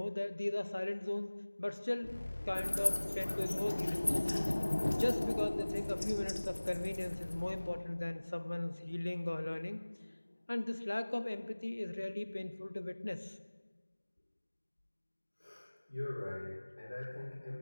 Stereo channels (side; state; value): both; inverted; correlation -1.00